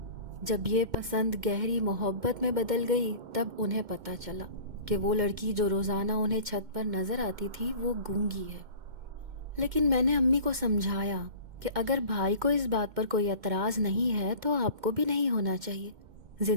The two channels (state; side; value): late; left; 2.1 ms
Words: جب یہ پسند گہری محبت میں بدل گئی تب انہیں پتہ چلا کہ وہ لڑکی جو روزانہ انہیں چھت پر نظر آتی تھی وہ گونگی ہے۔ لیکن میں نے امی کو سمجھایا کہ اگر بھائی کو اس بات پر کوئی اعتراض نہیں ہے تو آپ کو بھی نہیں ہونا چاہیے.